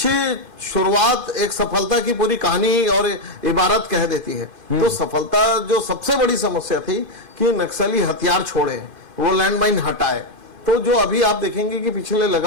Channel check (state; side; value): late; right; 2.1 ms